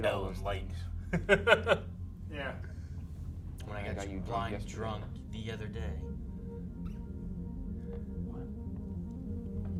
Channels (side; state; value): both; identical; correlation 1.00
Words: all those light. Yeah. When I I got, got you you drunk blind yesterday. drunk the other day.